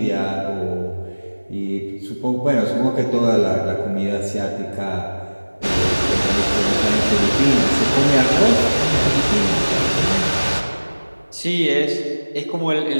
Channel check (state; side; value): inverted; both; correlation -1.00